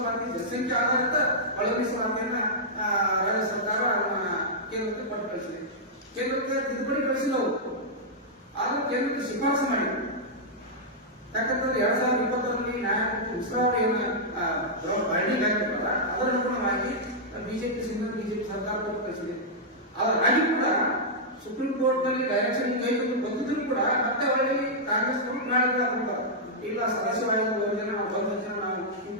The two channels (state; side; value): normal; both; correlation -0.09